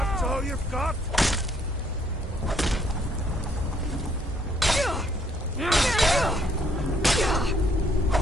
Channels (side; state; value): both; normal; correlation 0.67